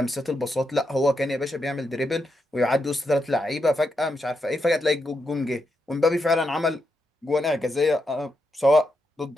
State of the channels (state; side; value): normal; both; correlation 0.83